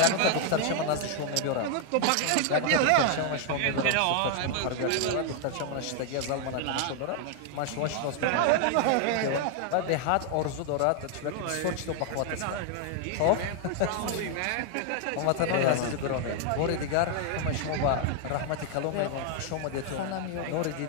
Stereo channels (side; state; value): both; different; correlation 0.00